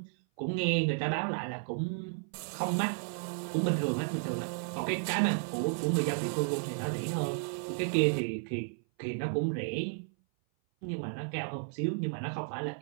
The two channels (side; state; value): left; silent; 56 dB below the other